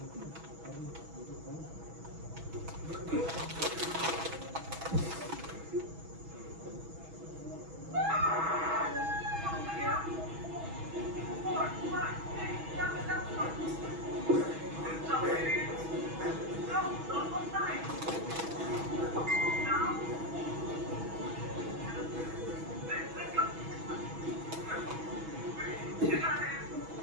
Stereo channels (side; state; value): left; late; 6.2 ms